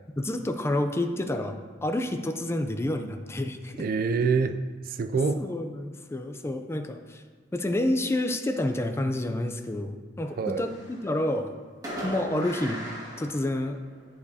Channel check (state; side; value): normal; both; correlation 0.73